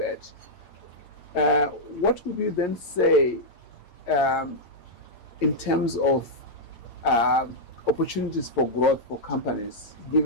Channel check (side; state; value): right; late; 8.9 ms